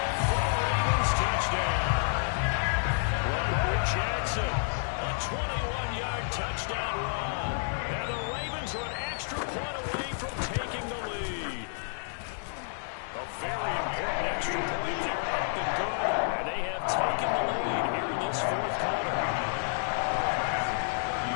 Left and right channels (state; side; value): silent; right; digital silence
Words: for the Ravens touchdown. Lamar Jackson, a 21-yard touchdown run. And the Ravens are an extra point away from taking the lead. A very important extra point there, up and good. And they have taken the lead here in this fourth quarter.